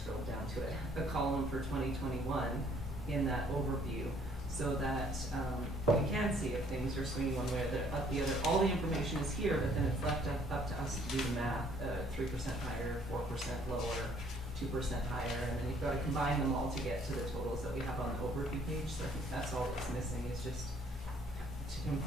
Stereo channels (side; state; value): both; normal; correlation 0.61